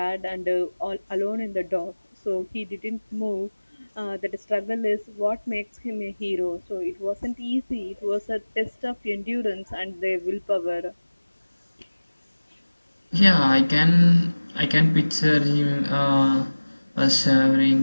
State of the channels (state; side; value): inverted; both; correlation -1.00